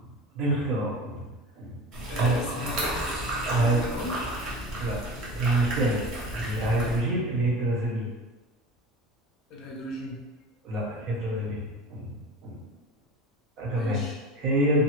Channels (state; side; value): normal; both; correlation 0.34